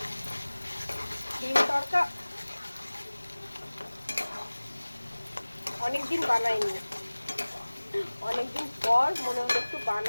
ডিম তড়কা অনেকদিন বানাইনি, অনেকদিন পর মনে হলো একটু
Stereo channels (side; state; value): both; inverted; correlation -1.00